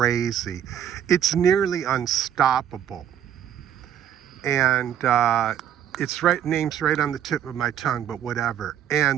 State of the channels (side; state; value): left; quieter; 9.9 dB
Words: It's nearly unstoppable. And it's right, name's right on the tip of my tongue, but whatever.